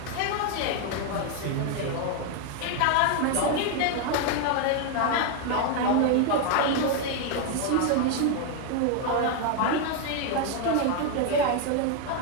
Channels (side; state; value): both; different; correlation 0.01